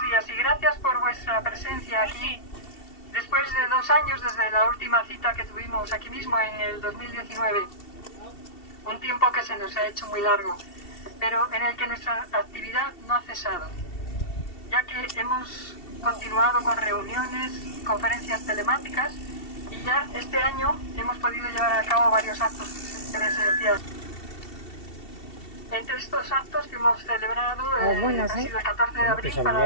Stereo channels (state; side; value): late; right; 2.7 ms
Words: días y gracias por vuestra presencia aquí. Después de 2 años desde la última cita que tuvimos aquí mismo en el 2019, un tiempo que se nos ha hecho muy largo, pero en el que nuestra actividad no ha cesado, ya que hemos continuado con reuniones, conferencias telemáticas y ya este año hemos podido llevar a cabo varios actos presenciales. Entre estos actos que hemos celebrado ha sido el 14 de abril